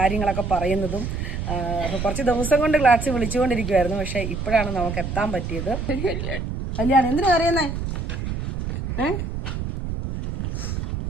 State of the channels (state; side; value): noise; right; rumble, 4 dB below the sound